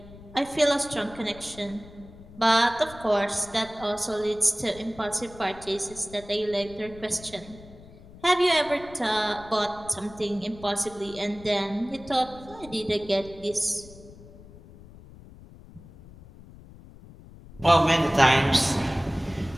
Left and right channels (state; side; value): noise; left; rumble, 19 dB below the sound